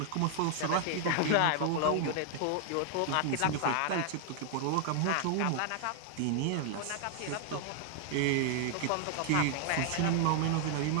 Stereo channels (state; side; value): different; both; correlation 0.00